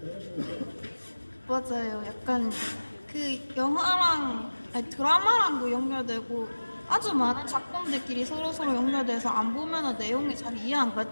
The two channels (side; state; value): both; inverted; correlation -1.00